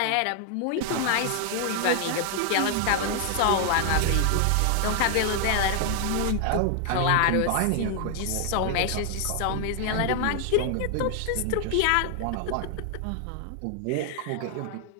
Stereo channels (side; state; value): both; different; correlation 0.00